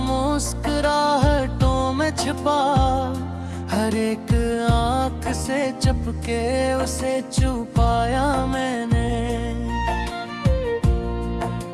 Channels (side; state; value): both; identical; correlation 1.00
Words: में छिपा, हर एक आंख से चपके उसे छुपाया मैंने।